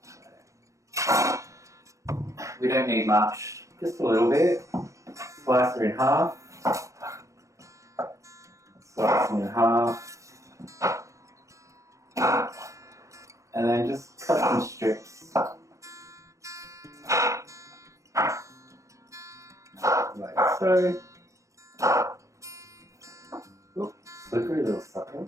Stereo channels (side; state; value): left; late; 0.15 ms